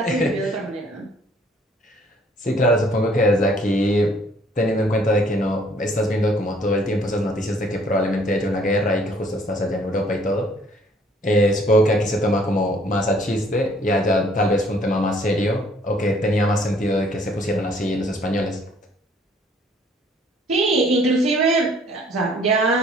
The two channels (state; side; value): normal; both; correlation 0.60